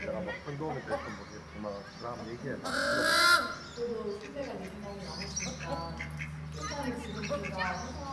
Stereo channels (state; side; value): identical; both; correlation 1.00